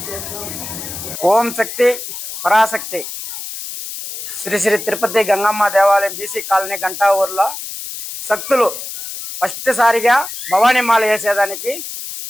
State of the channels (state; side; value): noise; left; hiss, 9 dB below the sound